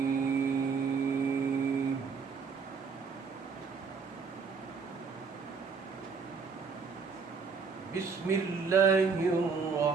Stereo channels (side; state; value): left; quieter; 5.3 dB